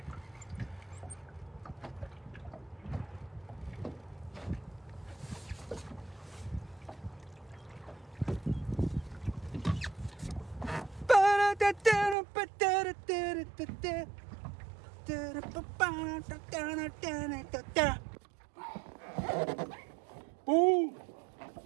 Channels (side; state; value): left; drops out; at 12.2 s